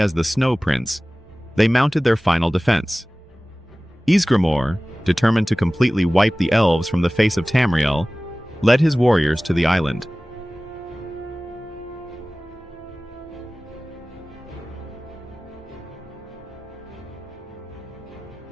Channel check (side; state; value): both; normal; correlation 0.98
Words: the Snow Prince, they mounted their final defense. Ysgramor, determined to completely wipe the elves from the face of Tamriel, led his warriors to the island.